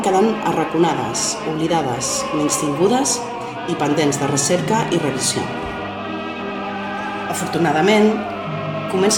quedant arraconades, oblidades, menystingudes i pendents de recerca i revisió. Afortunadament,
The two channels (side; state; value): both; identical; correlation 1.00